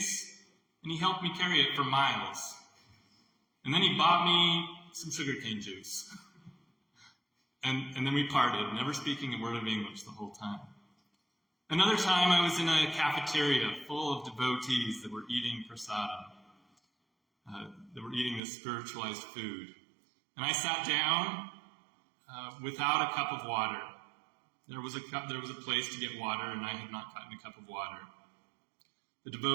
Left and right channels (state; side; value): drops out; left; at 18.4 s